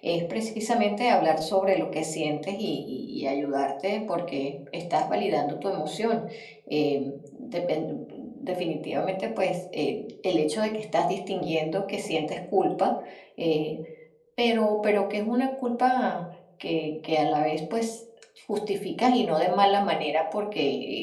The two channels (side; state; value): both; identical; correlation 1.00